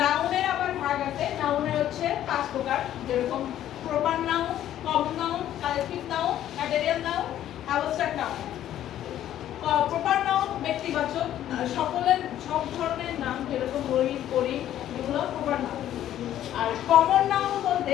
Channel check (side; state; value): right; quieter; 11.9 dB